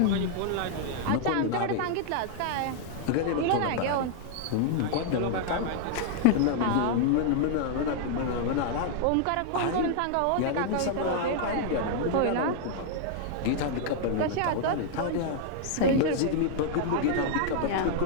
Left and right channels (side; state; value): both; different; correlation -0.01